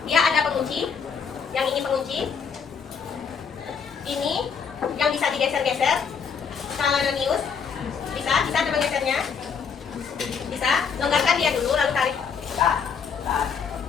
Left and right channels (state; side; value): quieter; right; 6.3 dB